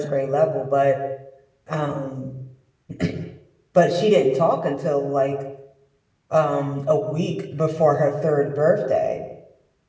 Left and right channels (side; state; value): both; identical; correlation 1.00